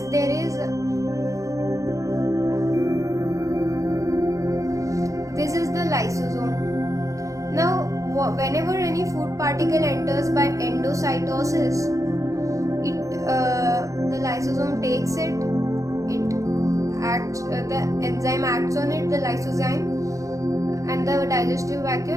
there is, this is the lysosome. Now, whenever any food particle enters by endocytosis, the lysosome takes it. The enzyme acts on it, the lysozyme, and the digestive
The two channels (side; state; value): left; late; 0.16 ms